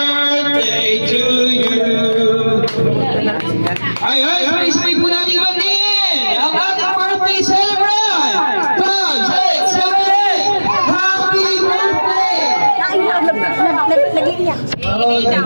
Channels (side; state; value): both; inverted; correlation -1.00